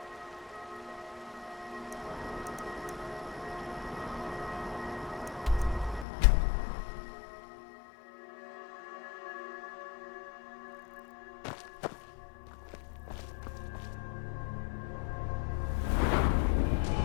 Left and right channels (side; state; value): right; drops out; at 6.1 s